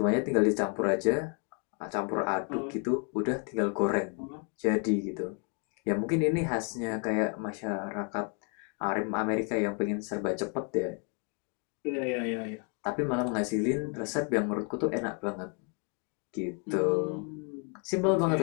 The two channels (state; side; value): quieter; right; 39.3 dB